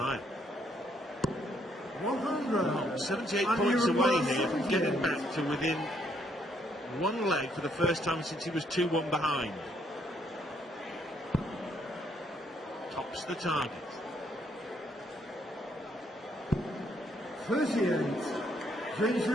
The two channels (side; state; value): both; normal; correlation 0.71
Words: 100. 78 points away here from getting back to within 1 leg for the first time since he was 2-1 behind. Tops the target. 38. James